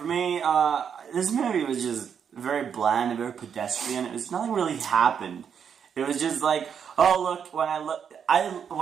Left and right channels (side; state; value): left; quieter; 7.5 dB